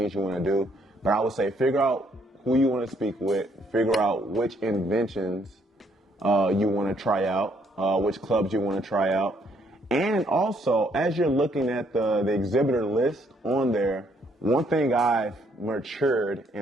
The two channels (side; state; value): both; normal; correlation 0.69